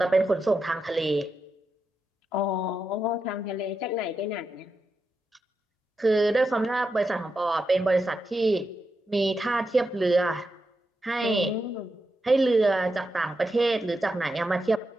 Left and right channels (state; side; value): normal; both; correlation 0.87